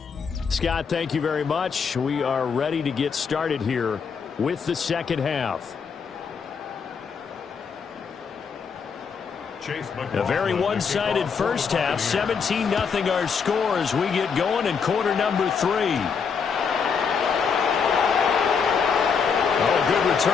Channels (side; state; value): right; quieter; 6.0 dB